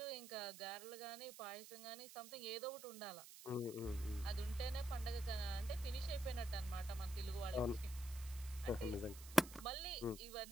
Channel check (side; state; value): right; noise; hiss, 14 dB below the sound